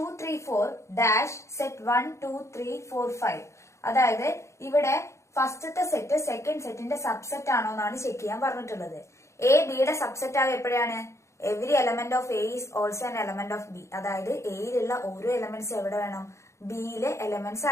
3 4 ഡാഷ് സെറ്റ് 1 2 3 4 5. അതായത് ഇവിടെ ഫസ്റ്റത്തെ സെറ്റ് സെക്കൻഡ് സെറ്റിന്റെ സബ്സെറ്റ് ആണോ എന്നാണ് ചെക്ക് ചെയ്യാൻ പറഞ്ഞിട്ടുള്ളത്. എ ബിയുടെ സബ്സെറ്റ് ആവുക എപ്പോഴാണ്? Every element of A is also an element of B. അതായത് എയിലുള്ള ഓരോ എലമെന്റ്സ് എവിടെ വേണം? ബിയിലെ എലമെന്റ്സ്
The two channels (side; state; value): right; late; 0.14 ms